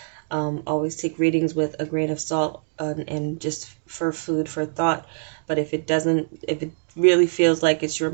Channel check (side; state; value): left; silent; digital silence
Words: Always take readings with a grain of salt and just for food for thought. But if it really feels like it's your